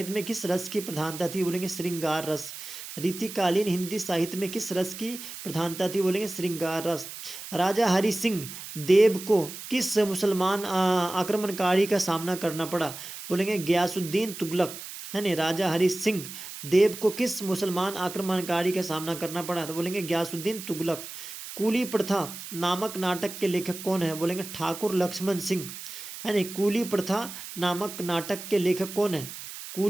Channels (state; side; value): noise; right; hiss, 11 dB below the sound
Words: में किस रस की प्रधानता थी, बोलेंगे श्रृंगार रस। रीतिकालीन हिंदी साहित्य में किस रस की प्रधानता थी, बोलेंगे श्रृंगार रस। राजा हरि सिंह देव को किस मुसलमान आक्रमणकारी का सामना करना पड़ा, बोलेंगे गयासुद्दीन तुगलक, है नहीं। राजा हरि सिंह देव को किस मुसलमान आक्रमणकारी का सामना करना पड़ा, तो बोलेंगे गयासुद्दीन तुगलक। कूली प्रथा नामक नाटक के लेखक कौन है, बोलेंगे ठाकुर लक्ष्मण सिंह, है नहीं। कूली प्रथा नामक नाटक के लेखक कौन है,